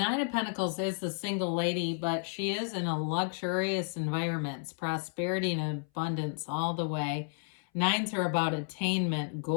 of Pentacles is the single lady, but she is in a luxurious environment. It's prosperity and abundance all the way. 9s are about attainment,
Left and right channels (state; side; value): silent; right; 56 dB below the other